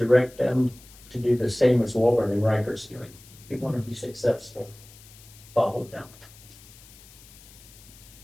them to do the same as Walburn Riker's doing. If you want to be successful, follow them.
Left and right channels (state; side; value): noise; left; hiss, 22 dB below the sound